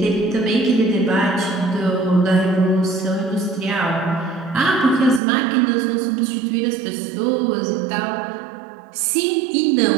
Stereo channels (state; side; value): drops out; left; at 5.2 s